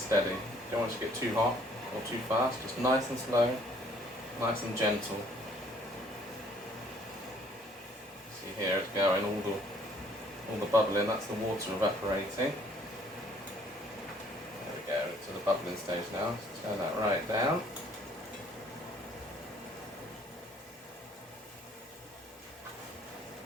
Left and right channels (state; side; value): normal; both; correlation 0.60